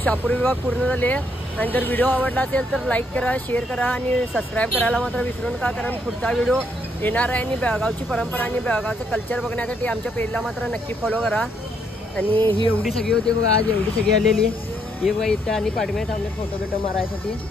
शापूर विभाग पूर्ण झाले. आणि जर व्हिडिओ आवडला असेल तर लाईक करा, शेअर करा आणि सबस्क्राईब करायला मात्र विसरू नका. कारण पुढचा व्हिडिओ येणार आहे आणि बेळगावची परंपरा आणि बेळगावचं कल्चर बघण्यासाठी आमच्या पेजला मात्र नक्की फॉलो करा. आणि ही एवढी सगळी होती बघा, आज एवढी सगळी आलेली ही बघा इथं. आणि पाठीमागे थांबले फोटो बिटो मारायसाठी.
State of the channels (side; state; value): both; normal; correlation 0.73